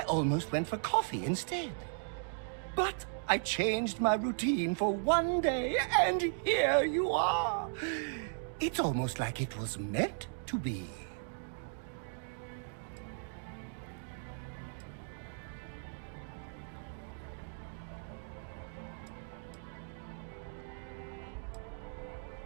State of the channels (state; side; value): silent; left; digital silence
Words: almost went for coffee instead. But I changed my routine for one day, and here you are. It's almost like it was meant to be.